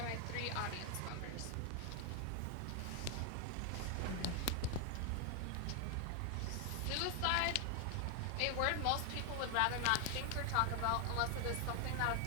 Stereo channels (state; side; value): different; both; correlation 0.00